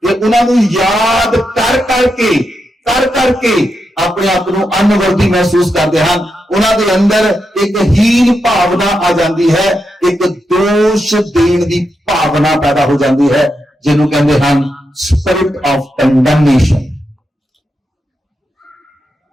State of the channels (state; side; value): normal; both; correlation 0.86